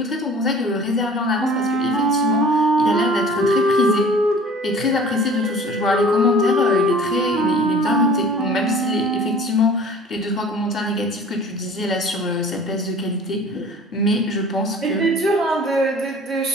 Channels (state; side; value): normal; both; correlation 0.46